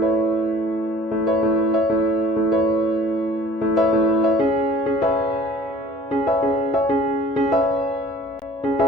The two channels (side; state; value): both; normal; correlation 0.49